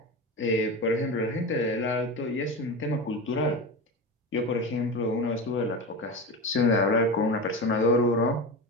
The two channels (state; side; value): normal; both; correlation 0.23